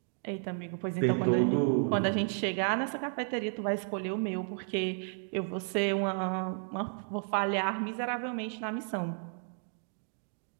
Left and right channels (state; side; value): silent; left; 56 dB below the other